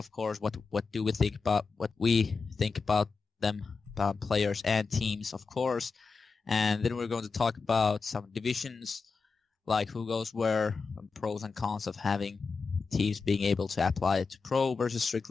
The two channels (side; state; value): right; quieter; 4.7 dB